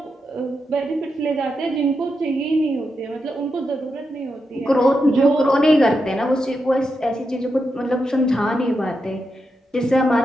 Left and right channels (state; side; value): normal; both; correlation 0.86